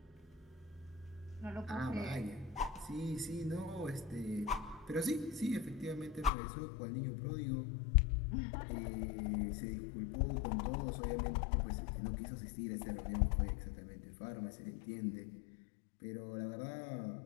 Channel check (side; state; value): right; drops out; at 6.3 s